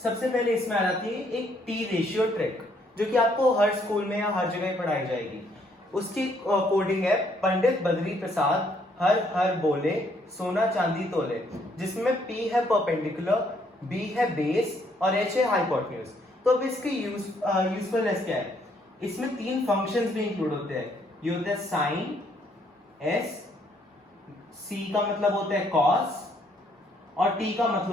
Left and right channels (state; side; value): normal; both; correlation 0.69